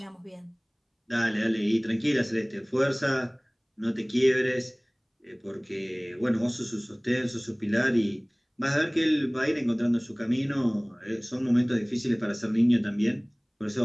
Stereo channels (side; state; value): both; identical; correlation 1.00